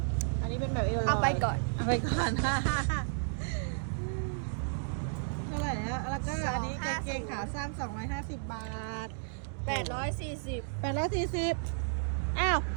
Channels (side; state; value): left; silent; digital silence